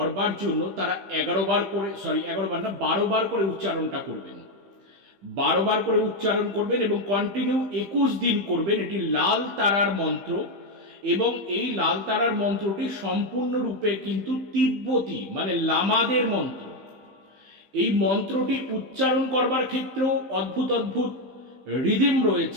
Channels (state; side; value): late; left; 15 ms